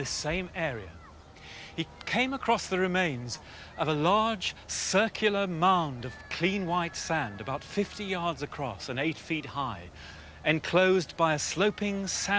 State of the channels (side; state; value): both; identical; correlation 1.00